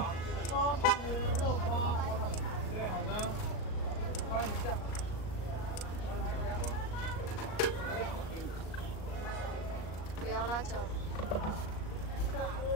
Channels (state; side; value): late; right; 38 ms